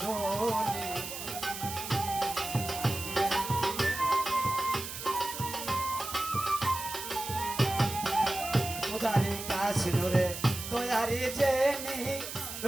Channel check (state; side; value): noise; right; hiss, 8 dB below the sound